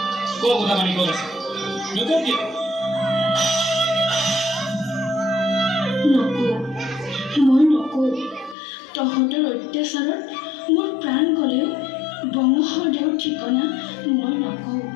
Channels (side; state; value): right; drops out; at 8.6 s